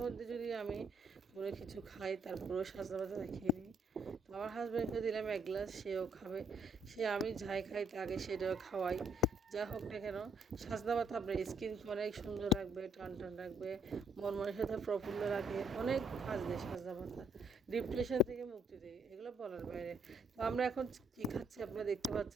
মধ্যে যদি আমি কোনো কিছু খাই, তারপরেও সাজনা পাতা খেয়ে নিই। তো আমার হাজব্যান্ডকে দিলাম এক গ্লাস, সেও খাবে। সে আমি যাই খাই তাকে সেটাও খাওয়াই। যা হোক না কেন, সাজনা পাতা আপনার স্কিনকে অনেক সুন্দর রাখবে, টান টান রাখবে, মন মনের সাথে প্রফুল্ল রাখে, অনেক কাজ দেয় সাজনা পাতা, ডিপ্রেশন থেকে মুক্তি দেয়, এগুলো বলার বাইরে। তো আমরা এখন কী খাচ্ছি আপনারা দেখতে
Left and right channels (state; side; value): normal; both; correlation 0.70